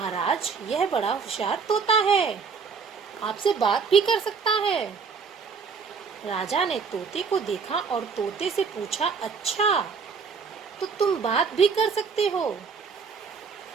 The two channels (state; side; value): quieter; left; 5.5 dB